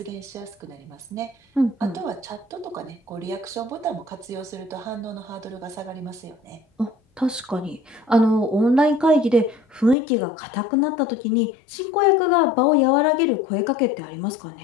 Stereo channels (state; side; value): drops out; right; at 10.0 s